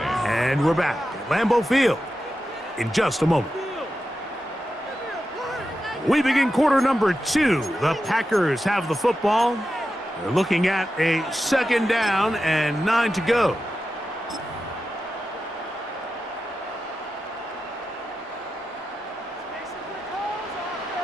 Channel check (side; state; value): both; normal; correlation 0.91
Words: And we're back at Lambeau Field in just a moment. We begin quarter number 2. The Packers have the football. They're looking at a second down and 9 to go.